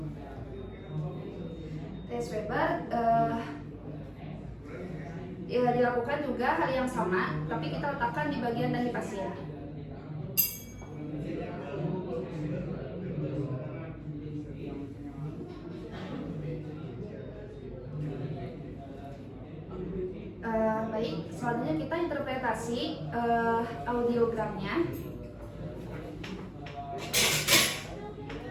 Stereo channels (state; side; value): identical; both; correlation 1.00